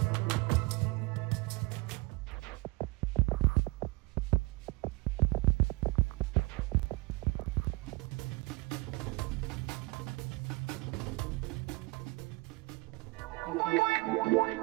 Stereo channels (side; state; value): left; quieter; 24.5 dB